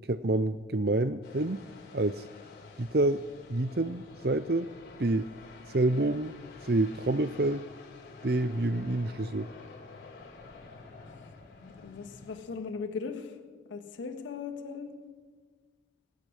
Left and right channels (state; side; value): normal; both; correlation 0.46